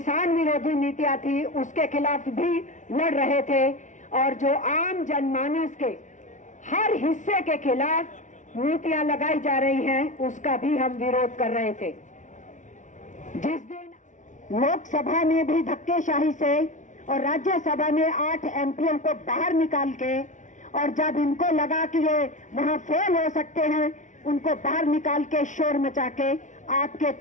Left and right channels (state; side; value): late; right; 0.36 ms